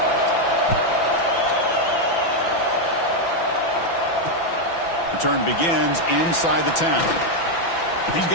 return begins inside the 10. He's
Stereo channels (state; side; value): late; right; 5.9 ms